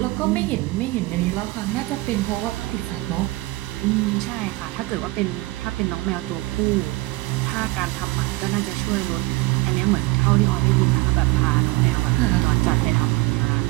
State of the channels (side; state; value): left; quieter; 21.3 dB